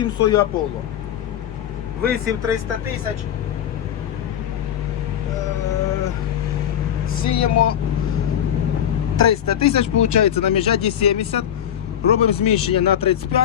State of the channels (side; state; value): right; quieter; 9.9 dB